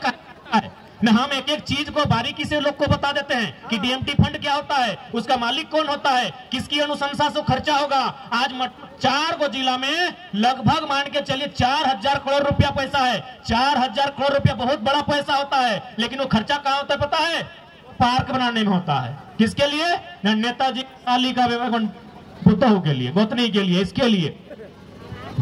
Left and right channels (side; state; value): both; identical; correlation 1.00